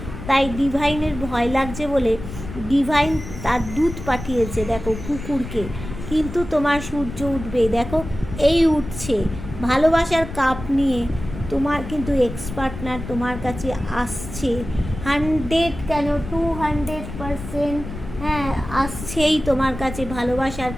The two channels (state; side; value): noise; left; rumble, 10 dB below the sound